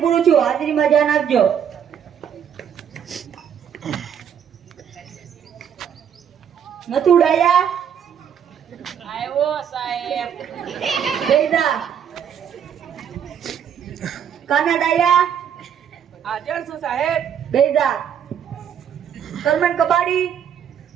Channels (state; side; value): quieter; left; 8.5 dB